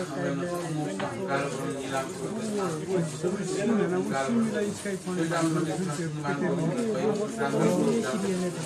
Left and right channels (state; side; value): identical; both; correlation 1.00